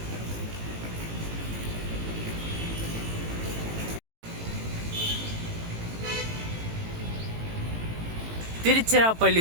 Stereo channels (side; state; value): left; late; 18 ms